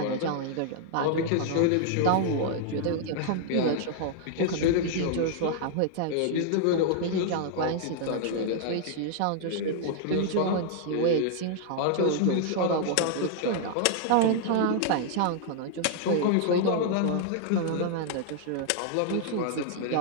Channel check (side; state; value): both; different; correlation 0.00